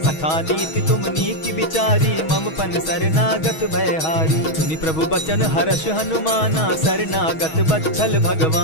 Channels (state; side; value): late; right; 6.3 ms